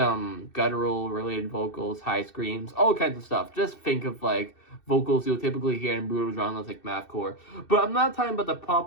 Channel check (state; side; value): late; right; 2.6 ms